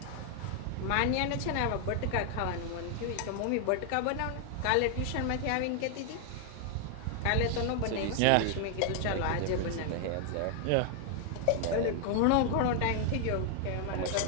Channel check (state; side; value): different; both; correlation 0.00